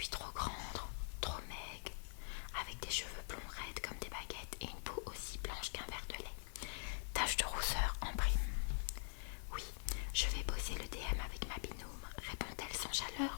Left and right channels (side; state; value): right; silent; digital silence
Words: trop grande, trop maigre, avec des cheveux blonds raides comme des baguettes et une peau aussi blanche qu'un verre de lait. Tache de rousseur en prime. Oui, je vais bosser le DM avec ma binôme, répond-elle sans chaleur